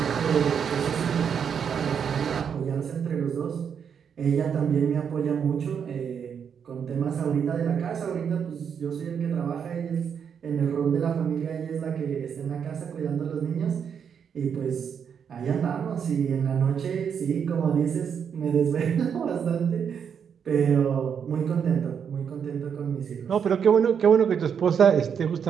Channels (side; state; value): left; quieter; 7.4 dB